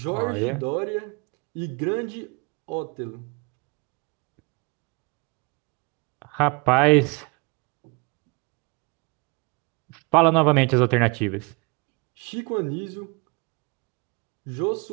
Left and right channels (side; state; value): left; quieter; 29.5 dB